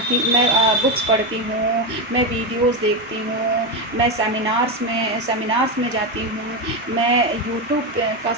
हूँ, मैं वीडियोज़ देखती हूँ, मैं सेमिनार्स में जाती हूँ, मैं यूट्यूब का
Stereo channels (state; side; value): normal; both; correlation 0.12